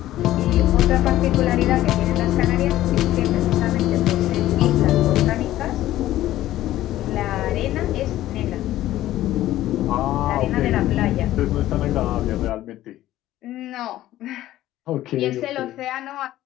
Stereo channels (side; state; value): right; quieter; 14.4 dB